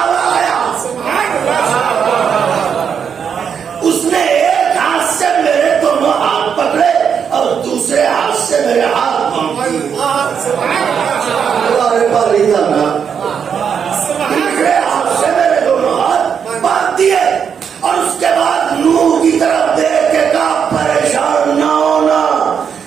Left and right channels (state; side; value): quieter; left; 7.2 dB